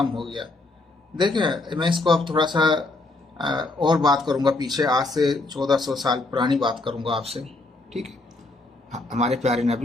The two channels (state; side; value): quieter; right; 3.1 dB